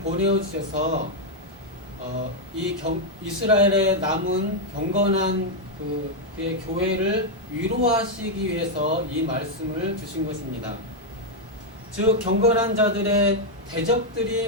주셔서 이스라엘에 남은 경건한 그의 교회를 위로하시기 위해서 이 말씀을 주신 것입니다. 즉 경건한 자들의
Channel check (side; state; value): both; normal; correlation -0.01